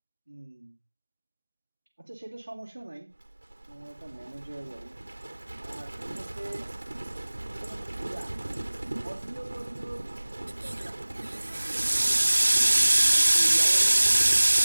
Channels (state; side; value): inverted; both; correlation -1.00